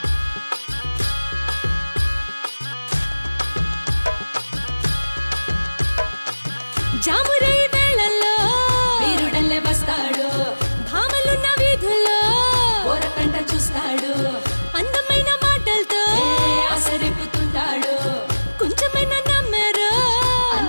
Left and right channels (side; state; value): both; inverted; correlation -1.00